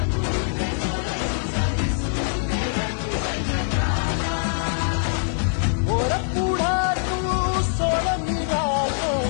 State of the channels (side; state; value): right; silent; 63 dB below the other